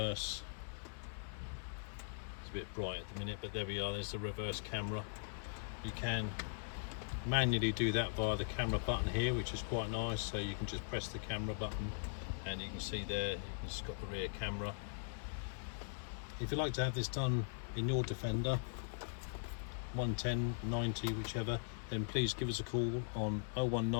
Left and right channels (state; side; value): silent; right; digital silence